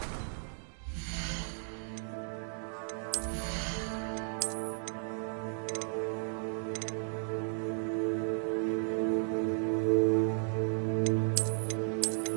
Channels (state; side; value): silent; left; 55 dB below the other